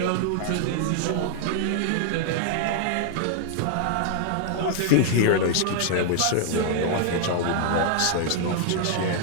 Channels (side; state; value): both; different; correlation -0.01